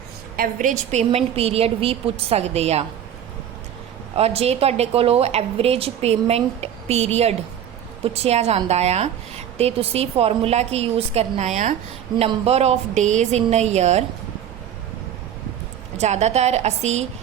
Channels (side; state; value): left; quieter; 9.8 dB